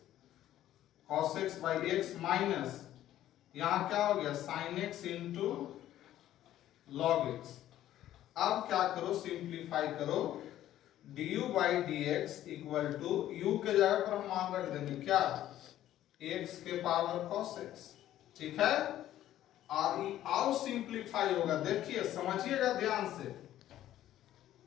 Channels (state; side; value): quieter; right; 12.8 dB